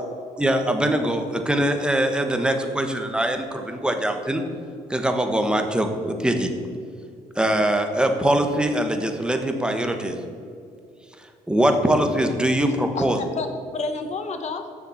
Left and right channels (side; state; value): both; normal; correlation 0.79